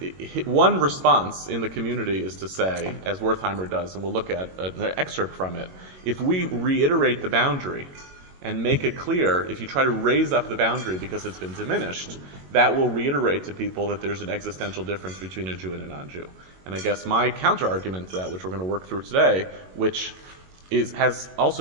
one response in the community is to say, as Wertheimer does, and we'll look at an excerpt from it, if we reiterate the boundary and make it clear, if you try to raise up the boundary because it's been diminished, that will reiterate to people that there's an existential difference between a Jew and a non-Jew. And I guess my counter-argument to that, which we're going to work through today, which has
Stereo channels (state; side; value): late; left; 22 ms